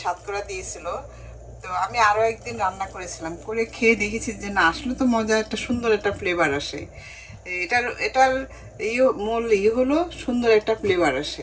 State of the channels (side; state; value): both; identical; correlation 1.00